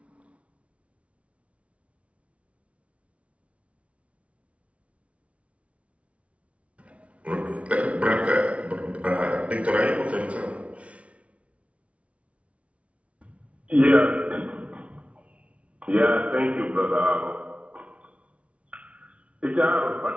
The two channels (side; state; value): left; late; 0.063 ms